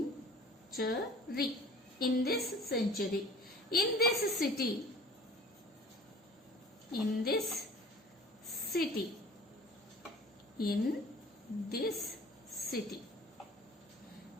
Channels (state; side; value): normal; both; correlation 0.45